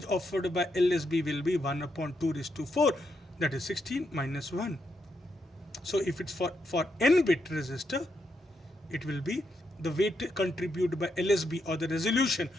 offered by LSB will be 1 upon 2 raised to 4, that is 16 minus 1. So if it's for n-bit resistor, it will be the weight contributed by LSB, or the resolution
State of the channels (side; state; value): both; normal; correlation 0.81